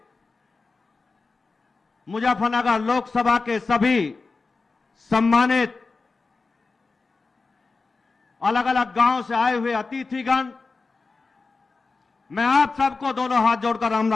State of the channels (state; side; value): quieter; right; 4.1 dB